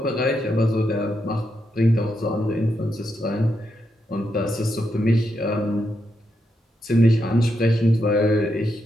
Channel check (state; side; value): normal; both; correlation 0.82